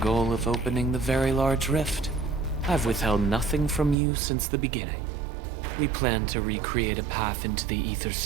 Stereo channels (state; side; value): drops out; left; at 4.0 s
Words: of opening the Very Large Rift, I've withheld nothing from you since the beginning. We plan to recreate a path into the ether